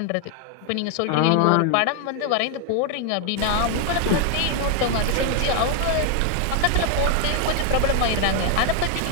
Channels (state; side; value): different; both; correlation 0.00